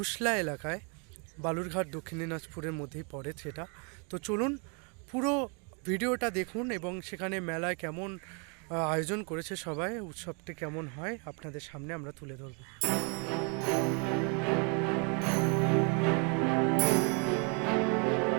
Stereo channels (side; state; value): left; quieter; 34.7 dB